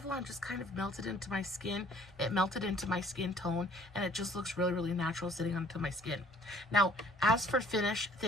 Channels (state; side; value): normal; both; correlation 0.56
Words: just kind of melted into my skin. It melted into my skin tone, and it just looks really, really natural sitting onto my skin. Now, as for finish,